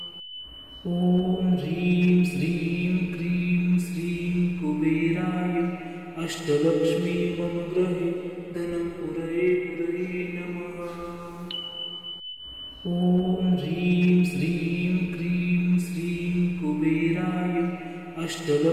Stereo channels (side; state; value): both; identical; correlation 1.00